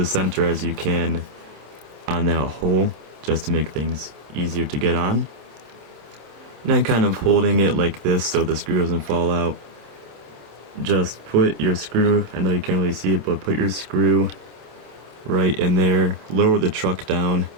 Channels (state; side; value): late; left; 27 ms